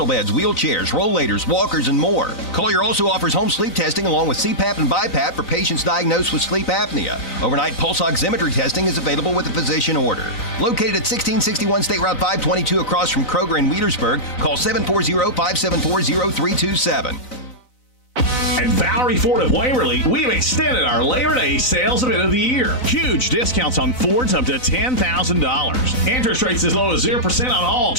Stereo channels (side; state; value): right; late; 3.9 ms